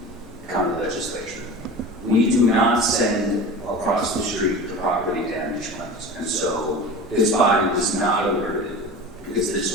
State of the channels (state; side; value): normal; both; correlation 0.33